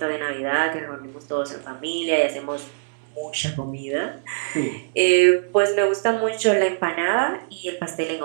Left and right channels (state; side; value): silent; left; digital silence